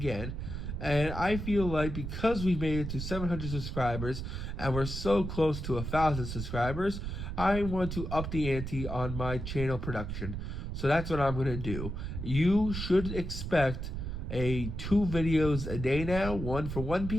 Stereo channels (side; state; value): right; noise; rumble, 5 dB below the sound